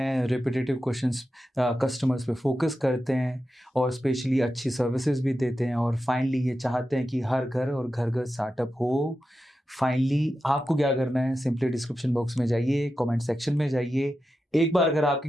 रिपीटेटिव क्वेश्चंस कस्टमर्स पे फोकस करते हैं और स्पेशली अच्छी सर्विसेज भी देते हैं, और फाइनली ये चाहते हैं कि हर घर और घर घर स्टार्टअप हो। फाइनली आपको क्या करना है, सिंपली डिस्क्रिप्शन बॉक्स में जाइए, कमेंट सेक्शन में जाइए। एक बार अगर आपके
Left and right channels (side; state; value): both; normal; correlation 0.91